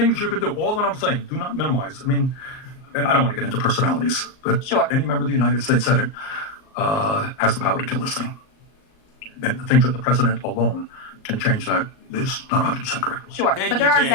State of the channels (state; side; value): late; right; 38 ms